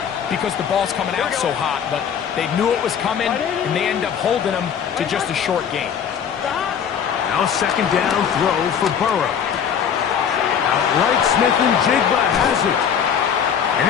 because the ball's coming out so hot, but they knew it was coming, and they end up holding them to just a short gain. Now a second down throw for Burrow. Outright Smith and Jigba has it.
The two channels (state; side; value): quieter; right; 7.9 dB